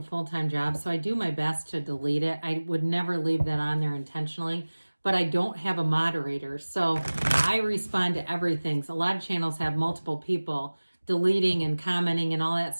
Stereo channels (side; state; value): both; inverted; correlation -1.00